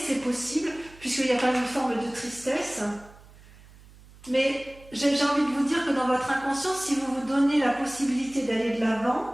possible, puisqu'il y a quand même une forme de tristesse. Mais j'ai envie de vous dire que dans votre inconscient, si vous vous donnez la possibilité d'aller de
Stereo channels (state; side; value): noise; right; hum, 23 dB below the sound